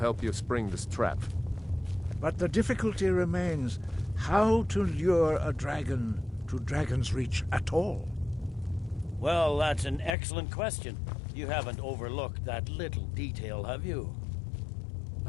you spring this trap. But the difficulty remains how to lure a dragon to Dragon's Reach at all. Well, that's an excellent question. You haven't overlooked that little detail, have you?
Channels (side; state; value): right; drops out; at 10.2 s